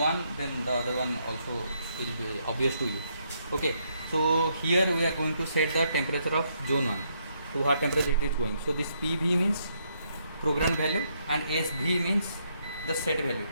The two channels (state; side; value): inverted; both; correlation -0.75